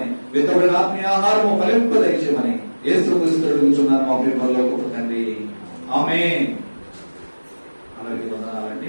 విత్తబడిన ఆత్మీయ ఆహారము ఫలింపదయచేయమని యేసు క్రీస్తు అడుగుచున్నాను మా ప్రియ పరలోకపు తండ్రి. ఆమేన్. అందరికీ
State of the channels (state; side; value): inverted; both; correlation -1.00